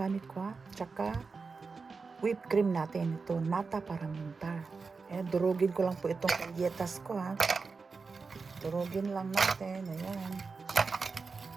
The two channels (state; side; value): quieter; left; 4.6 dB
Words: ko ha. Tsaka, whipped cream natin. Ito, nata para muntar. Durugin ko lang po itong galletas ko ha. Durugin lang natin. Ayan.